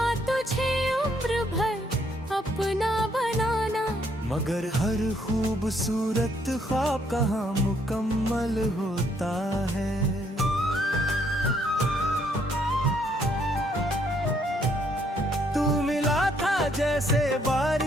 तुझे उम्र भर अपना बनाना, मगर हर खूबसूरत ख्वाब कहाँ मुकम्मल होता है। जैसे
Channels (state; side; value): normal; both; correlation 0.69